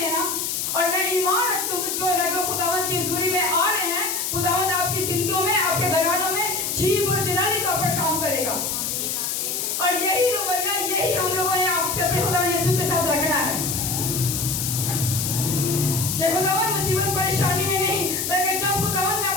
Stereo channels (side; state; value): left; noise; hiss, 1 dB below the sound